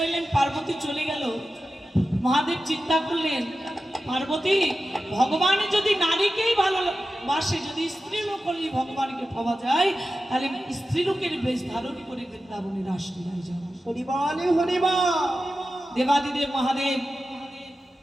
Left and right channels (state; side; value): normal; both; correlation 0.93